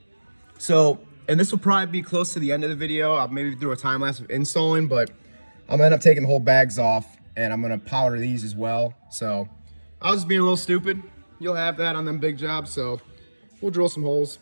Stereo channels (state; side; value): inverted; both; correlation -1.00